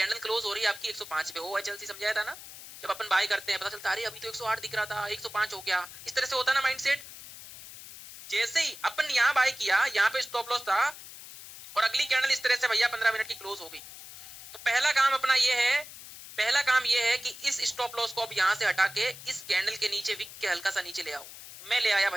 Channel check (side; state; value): left; noise; hiss, 15 dB below the sound